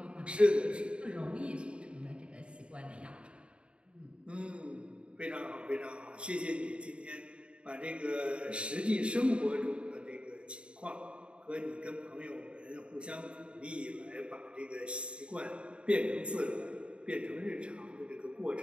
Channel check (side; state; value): left; late; 0.057 ms